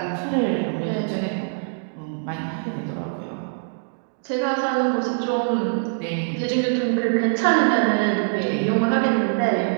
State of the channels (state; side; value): silent; left; digital silence